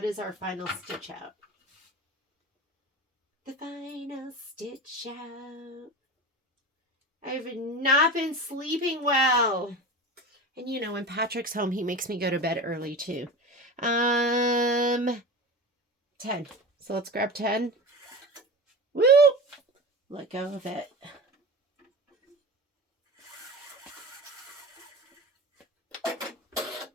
is our final stitch out. The final stitch out. I've not been sleeping well. And you know, when Patrick's home, he makes me go to bed early too. 10. So let's grab 10. Woo! Let go of it.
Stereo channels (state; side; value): normal; both; correlation 0.30